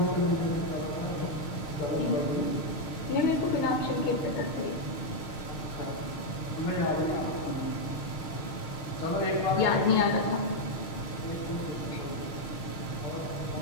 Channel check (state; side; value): late; right; 6.3 ms